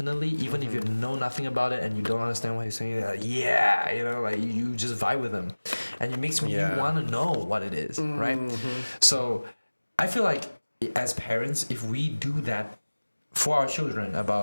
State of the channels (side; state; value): both; inverted; correlation -1.00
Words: even if you know nothing about it and you don't understand what he's saying, like, you just vibe with them, and it makes you want to know what it is, right? So I feel like, as parents, if we do that for our children